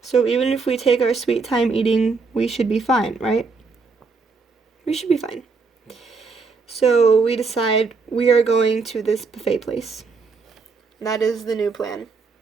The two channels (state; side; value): quieter; left; 4.5 dB